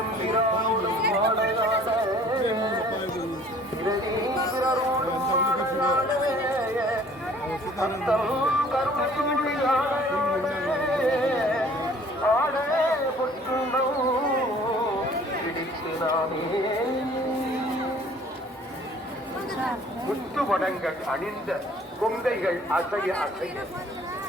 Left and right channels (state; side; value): normal; both; correlation 0.53